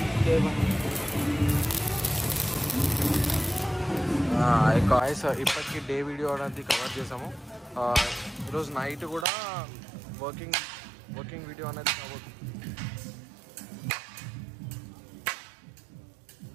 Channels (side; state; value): left; drops out; at 9.2 s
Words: గాయ్స్, ఇప్పటికీ డే వీడియో అనేది కవర్ చేసాము. ఈరోజు నైట్ కూడా వర్కింగ్ వీడియో అనేది కవర్.